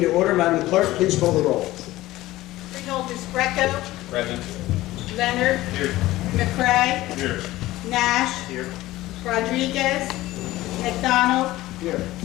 to order. Madam Clerk, please call the roll. Freeholders Greco. Present. Leonard. Here. McCray. Here. Nash. Here. Rodriguez. McDonald. Here.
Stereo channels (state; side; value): quieter; right; 17.0 dB